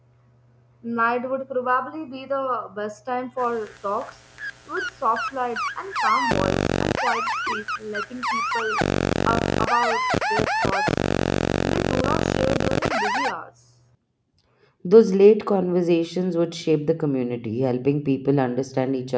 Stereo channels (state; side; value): identical; both; correlation 1.00